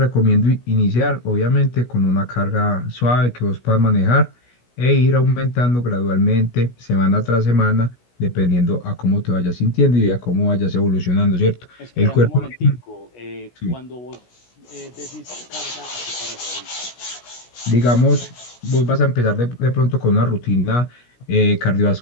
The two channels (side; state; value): right; late; 16 ms